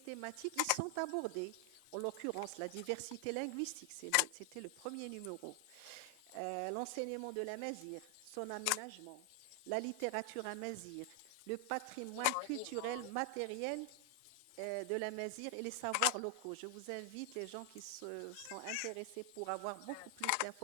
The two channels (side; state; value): both; different; correlation 0.00